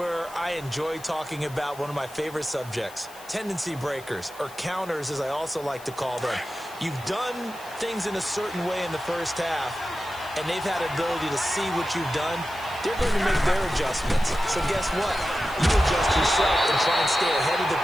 I enjoy talking about one of my favorite subjects, tendency breakers, or counters as I also like to call them. You've done things in a certain way in the first half, and they've had ability to see what you've done. They're going to make their adjustments. So guess what? You adjust yourself and try and stay ahead of the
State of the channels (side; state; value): left; noise; hiss, 20 dB below the sound